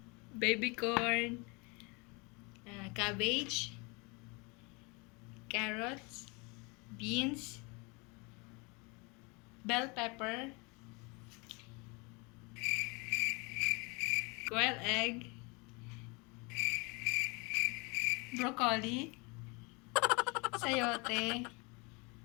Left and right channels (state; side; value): quieter; right; 29.1 dB